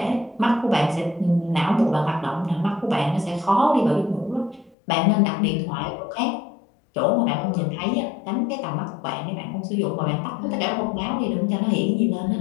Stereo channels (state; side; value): drops out; right; at 4.8 s